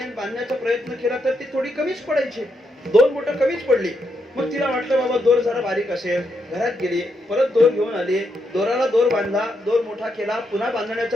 बांधण्याचा प्रयत्न केला तर ती थोडी कमीच पडायची, 2 बोटं कमीच पडली. मग तिला वाटलं बाबा दोर जरा बारीक असेल, घरात गेली, परत दोर घेऊन आली, दोराला दोर बांधला, दोर मोठा केला, पुन्हा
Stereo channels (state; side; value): normal; both; correlation 0.80